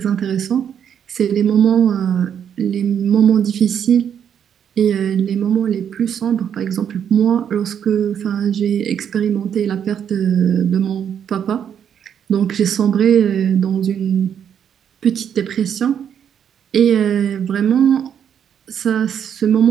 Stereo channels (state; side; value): quieter; left; 8.5 dB